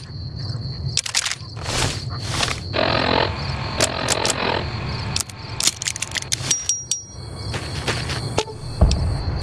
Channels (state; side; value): identical; both; correlation 1.00